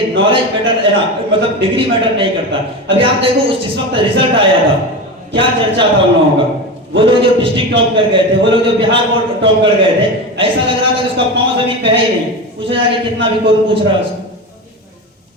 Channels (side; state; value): both; normal; correlation 0.23